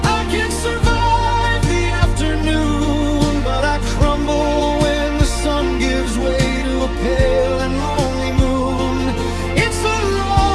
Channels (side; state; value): both; identical; correlation 1.00